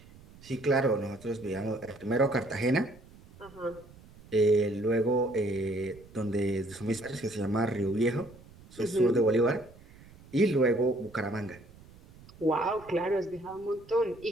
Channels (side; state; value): right; noise; rumble, 22 dB below the sound